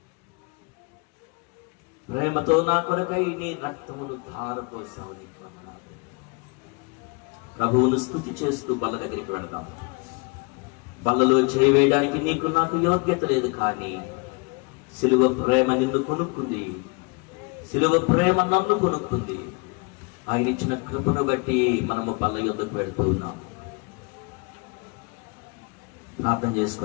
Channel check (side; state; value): right; quieter; 30.6 dB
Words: ప్రేమతో నా కొరకై నీ రక్తమును ధారపోసావు, నీకు వందనాలు. ప్రభువును స్తుతి చేస్తూ బల్ల దగ్గరికి వెళదాం. బల్లలో చేయవేయడానికి నీకు నాకు యోగ్యత లేదు, కానీ సిలువ ప్రేమ నిన్ను కొనుక్కుంది, సిలువ ప్రేమ నన్ను కొనుక్కుంది. ఆయన ఇచ్చిన కృపను బట్టి మనము బల్ల యొద్దకు వెళ్తూ ఉన్నాము. ప్రార్థన